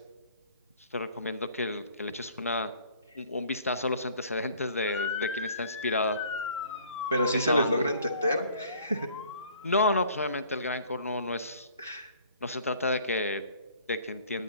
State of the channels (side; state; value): both; inverted; correlation -0.54